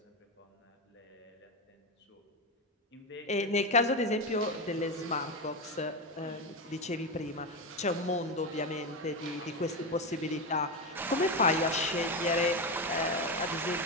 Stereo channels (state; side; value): normal; both; correlation 0.13